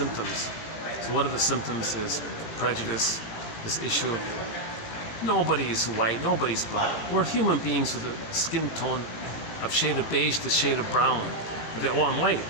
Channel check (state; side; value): late; right; 18 ms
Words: So one of the symptoms is prejudice, this issue of nobody's white, nobody's black. We're human beings with a skin tone of shade of beige to shade of brown. Oh, I'm white.